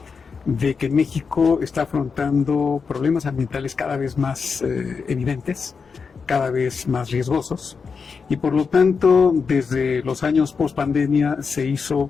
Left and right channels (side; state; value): right; quieter; 5.4 dB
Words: de que México está afrontando problemas ambientales cada vez más evidentes, cada vez más riesgosos, y por lo tanto, desde los años post-pandemia se hizo